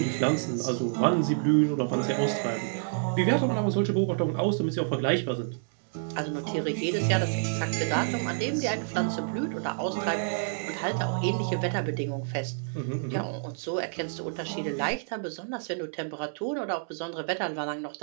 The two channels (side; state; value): left; silent; 59 dB below the other